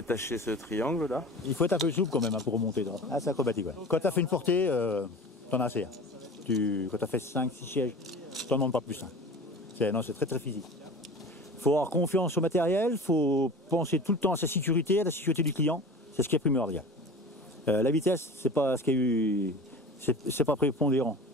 ce triangle là. Il faut être un peu souple quand même hein, pour remonter. Ah, c'est acrobatique. Ouais. Quand tu as fait une portée, t'en as assez. Hein. Quand tu as fait 5-6 sièges, t'en demandes pas plus. Hein. C'est très très physique. Il faut avoir confiance au matériel, il faut penser tout le temps à sa sécurité, à la sécurité du client. C'est ce qui est primordial. La vitesse, c'est pas ce qu'il y a eu, c'est pas prépondérant.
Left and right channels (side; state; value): both; normal; correlation 0.37